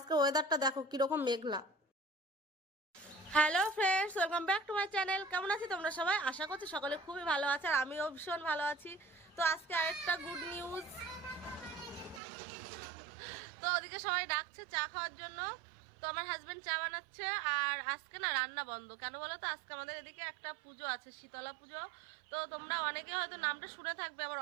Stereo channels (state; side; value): drops out; left; at 12.2 s